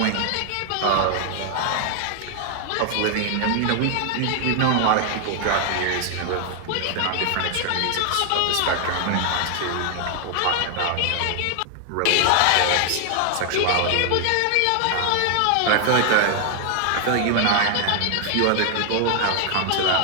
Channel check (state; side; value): different; both; correlation 0.00